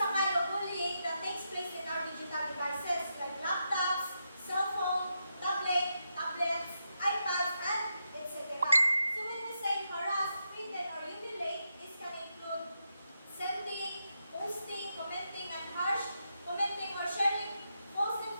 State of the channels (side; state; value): both; inverted; correlation -0.85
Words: a kind of bullying that takes place in our digital devices like laptops, cell phone, tablets, iPads, and etc. So when we say harass, threaten, or humiliate, this can include sending, posting, commenting or sharing false